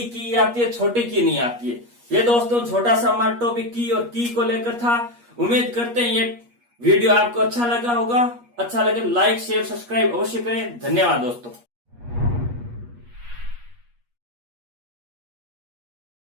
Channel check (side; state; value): left; late; 8.4 ms